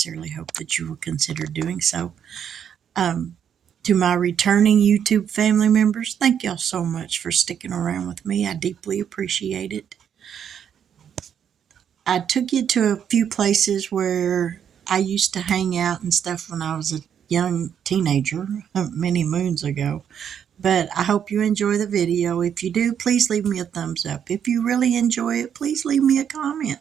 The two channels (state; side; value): quieter; left; 8.5 dB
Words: hope that you will consider doing so. To my returning YouTube family members, thank y'all so much for sticking around with me. I deeply appreciate it. I took you to a few places where I used to hang out and stuff when I was a young teenager many moons ago. But I hope you enjoy the video. If you do, please leave me a thumbs up. If you really enjoy it, please leave me a comment.